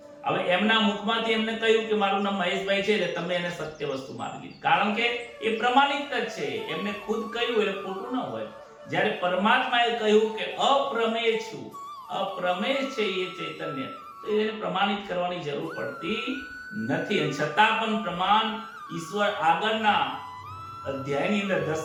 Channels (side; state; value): both; identical; correlation 1.00